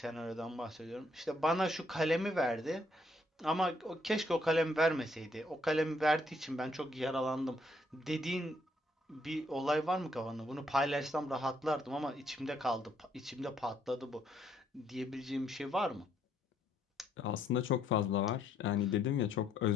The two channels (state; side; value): normal; both; correlation 0.71